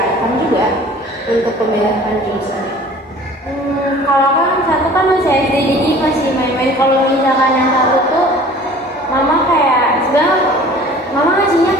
juga untuk pemilihan jurusan. Kalau kan satu kan masih SD, jadi masih main-main. Kalau misalkan yang satu tuh mama kayak sebenarnya mama ngasihnya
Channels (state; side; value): normal; both; correlation 0.47